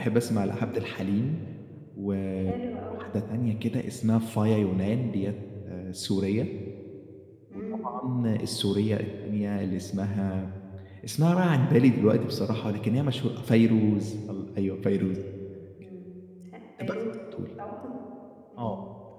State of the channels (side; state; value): both; identical; correlation 1.00